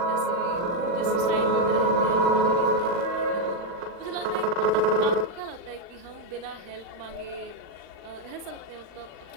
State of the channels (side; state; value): left; late; 40 ms